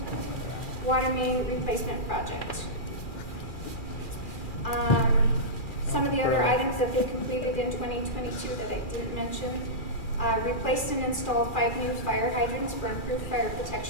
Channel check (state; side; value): late; right; 2.4 ms